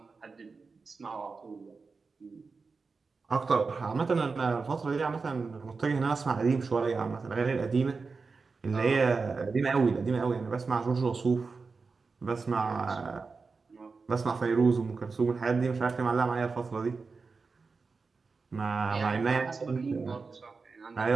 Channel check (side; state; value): left; quieter; 4.5 dB